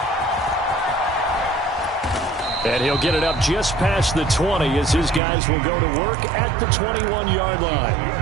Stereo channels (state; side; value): drops out; left; at 5.2 s